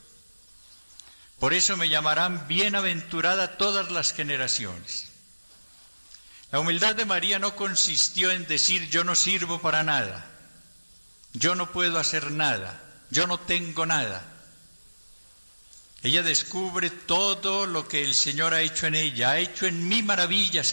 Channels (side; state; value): both; inverted; correlation -1.00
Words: Por eso me llamarán bienaventurada todas las generaciones. La humildad de María no consistió en decir yo no sirvo para nada, yo no puedo hacer nada, yo no tengo nada. Ella descubre todo lo que el Señor ha hecho en ella, ha hecho en mí maravillas